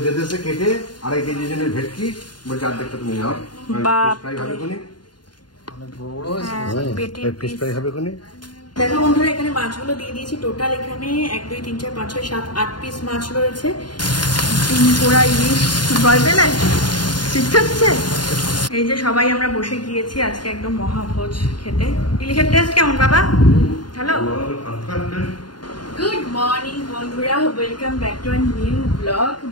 দিয়েছে কেটে, 2.5 কেজি জনের ভেটকি বলছে অর্ধেকটা তুমি নাও। দেখো বন্ধুরা এখানে মাছগুলো দিয়ে দিয়েছি, টোটাল এখানে 1 2 3 4 5 6 7 8 পিস মাছ রয়েছে। 3 পোড়া ইলিশ ভয় পেলে ঠিক আছে। এই যে সবাই আমরা বসে গিয়েছি আজকে একদম মহাভোজ খেতে। ইলিশের টেস্ট কেমন বাবা? হ্যালো, গুড মর্নিং বন্ধুরা, welcome back to our new blog.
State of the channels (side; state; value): right; late; 0.71 ms